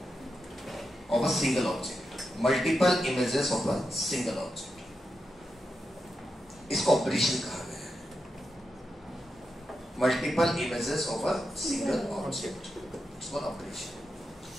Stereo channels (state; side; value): normal; both; correlation 0.87